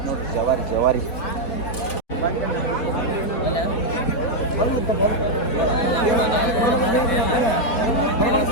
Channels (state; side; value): late; right; 4.1 ms